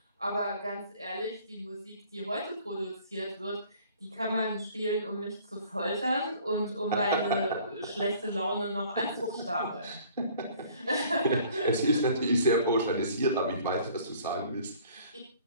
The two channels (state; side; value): inverted; both; correlation -0.53